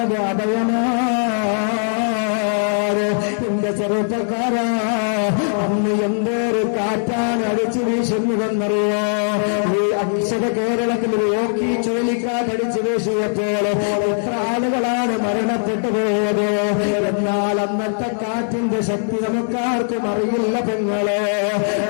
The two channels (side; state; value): right; silent; digital silence